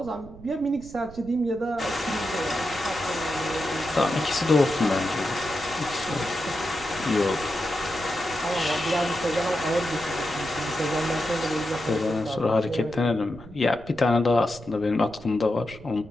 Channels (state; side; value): noise; right; rumble, 18 dB below the sound